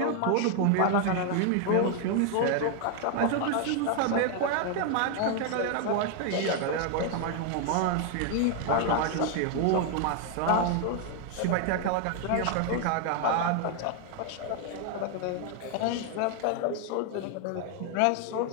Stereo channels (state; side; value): different; both; correlation 0.00